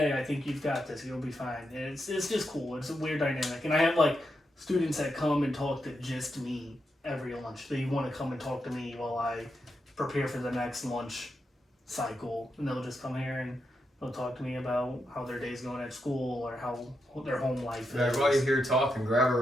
I think you've got this, you'll be fine. And it's just cool. It's a weird dynamic. And I have students that come and talk to just me every lunch. They want to come and talk to me while I prepare for the next lunch cycle. And they'll just come here and they'll talk to me about how their day's going at school or how their home life is. While you're here talking, grab a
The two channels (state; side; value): normal; both; correlation 0.85